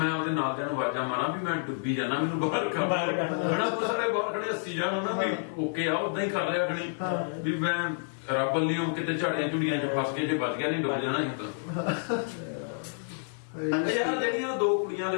ਉਹਦੇ ਨਾਲ ਦਿਆਂ ਨੂੰ ਆਵਾਜ਼ਾਂ ਮਾਰਾਂ ਵੀ ਮੈਂ ਡੁੱਬੀ ਜਾਣਾ, ਮੈਨੂੰ ਬਾਹਰ ਕਰ ਹਨਾ। ਕੁਛ ਸਾਰੇ ਬਾਹਰ ਖੜੇ ਹੱਸੀ ਜਾਣ ਨਾ ਵੀ ਓਕੇ ਆ, ਉਦਾਂ ਹੀ ਕਰ ਰਿਹਾ ਖਣੀ ਵੀ ਮੈਂ ਰੱਬ ਲਿਓ ਕਿਤੇ ਝਾੜੀਆਂ ਝੁੜੀਆਂ 'ਚ ਫਸ ਕੇ ਜੇ ਬਚ ਗਿਆ ਨਹੀਂ ਡੁੱਬ ਜਾਣਾ ਸੀ ਤਾਂ। ਯਾਰ ਜਿਹੜੀਆਂ 2 ਕੁੜੀਆਂ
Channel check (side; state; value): right; silent; 58 dB below the other